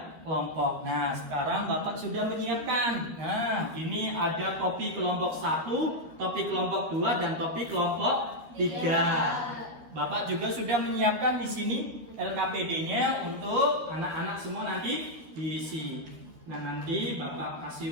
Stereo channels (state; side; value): late; left; 13 ms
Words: kelompok. Nah, sekarang Bapak sudah menyiapkan. Nah, ini ada topi kelompok 1, topi kelompok 2, dan topi kelompok 3. Bapak juga sudah menyiapkan di sini LKPD-nya untuk anak-anak semua nanti diisi. Nah, nanti Bapak